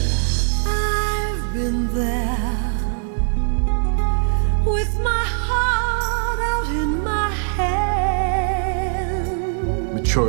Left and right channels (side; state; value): left; silent; digital silence